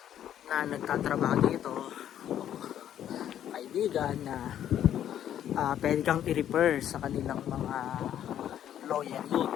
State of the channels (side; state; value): right; quieter; 10.6 dB